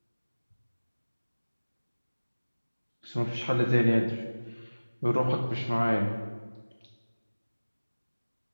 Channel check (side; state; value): both; inverted; correlation -1.00